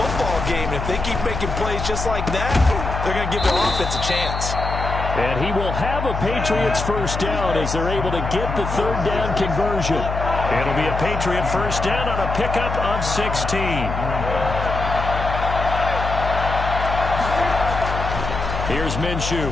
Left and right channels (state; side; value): noise; left; hum, 4 dB below the sound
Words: game. And if they keep making plays just like that, they're going to give their offense a chance. And he will have a Patriots 1st down as they're able to get the 3rd down conversion. It'll be a Patriot 1st down on a pickup of 16. Here's Minshew.